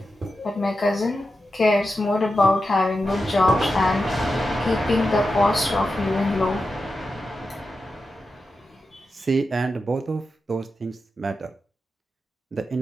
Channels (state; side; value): normal; both; correlation 0.90